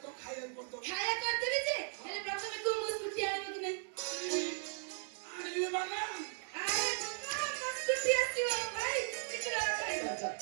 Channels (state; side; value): silent; left; 53 dB below the other